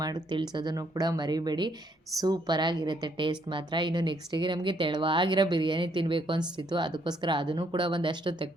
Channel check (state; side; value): normal; both; correlation 0.70